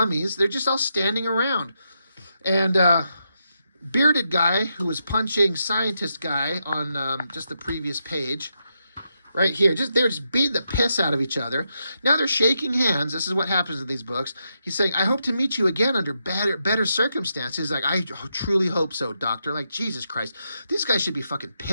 they're just all standing around. And bearded guy who was punching scientist guy on just the previous page, right here, they're just beating the piss out of each other. Now they're shaking hands. This is what happens in these books. He's saying, I hope to meet you again under better circumstances. Like, I truly hope so, doctor. Like, Jesus Christ. These guys should be fucking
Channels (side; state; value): both; inverted; correlation -0.83